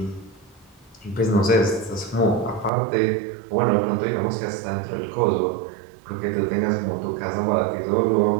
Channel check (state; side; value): drops out; left; at 2.7 s